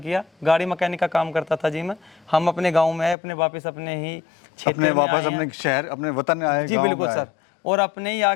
किया। गाड़ी मैकेनिक का काम करता था जी मैं। हम अपने गाँव में आए, अपने वापस अपने ही क्षेत्र में वापस अपने शहर अपने वतन आए जी बिल्कुल सर, और अपने ही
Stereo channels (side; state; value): right; drops out; at 3.2 s